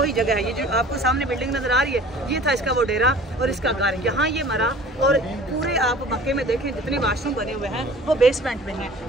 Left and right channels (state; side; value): normal; both; correlation 0.45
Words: जगह है, ये जो आपको सामने बिल्डिंग नज़र आ रही है, ये था इसका वो डेरा और इसका घर। यहाँ ये मरा, और पूरे आप मक्के में देखें जितने वाशरूम बने हुए हैं वो बेसमेंट में हैं।